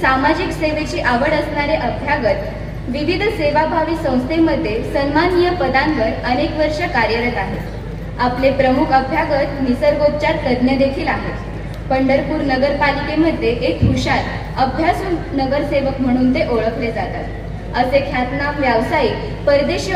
सामाजिक सेवेची आवड असणारे अभ्यागत विविध सेवाभावी संस्थेमध्ये सन्माननीय पदांवर अनेक वर्ष कार्यरत आहेत. आपले प्रमुख अभ्यागत निसर्गोपचार तज्ज्ञ देखील आहेत. पंढरपूर नगरपालिकेमध्ये एक हुशार अभ्यासू नगरसेवक म्हणून ते ओळखले जातात. असे ख्यातनाम व्यावसायिक परदेशी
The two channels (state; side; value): identical; both; correlation 1.00